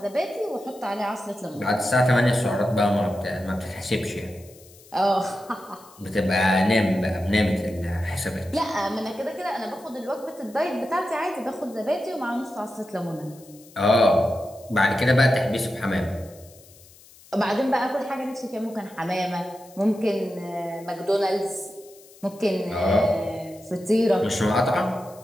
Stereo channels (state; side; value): noise; left; hiss, 24 dB below the sound